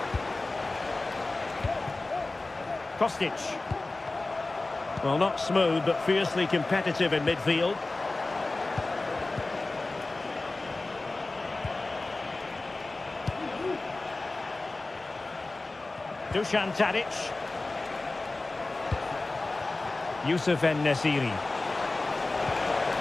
Kostic. Well, not smooth, but fiercely competitive in midfield. Dusan Tadic. Youssef En-Nesyri.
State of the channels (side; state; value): right; quieter; 3.2 dB